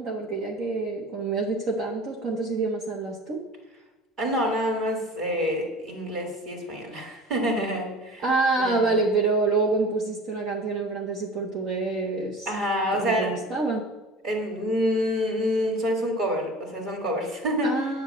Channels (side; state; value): both; normal; correlation 0.40